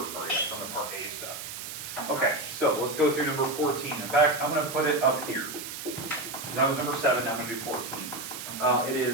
part, yeah. It's on the part A stuff. Okay, so let's go through number 14. In fact, I'm going to put it up here. That was number 7, now I'm going to do 14. It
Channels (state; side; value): noise; right; hiss, 8 dB below the sound